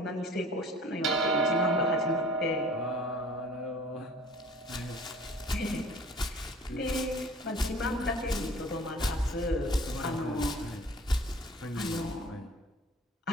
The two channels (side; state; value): both; normal; correlation 0.48